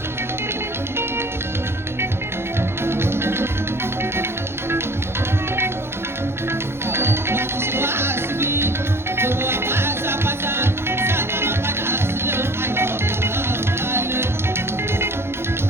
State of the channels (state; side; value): late; left; 0.12 ms